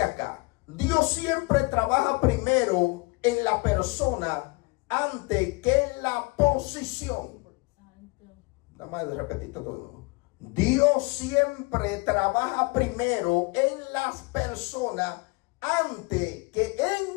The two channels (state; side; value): quieter; right; 27.2 dB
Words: acá, Dios siempre trabaja primero en la persona antes que en la posición. Nada más de repetir todo. Dios siempre trabaja primero en las personas antes que